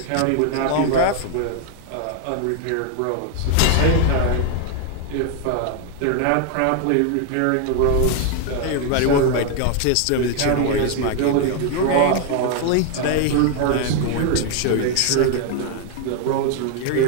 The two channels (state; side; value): different; both; correlation 0.00